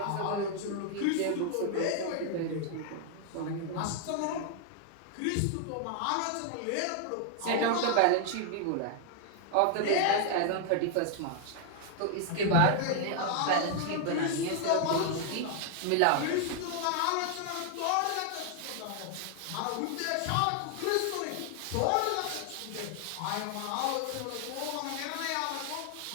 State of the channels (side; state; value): both; different; correlation 0.00